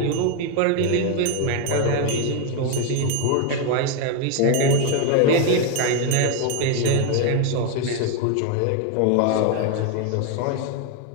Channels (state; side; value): different; both; correlation 0.01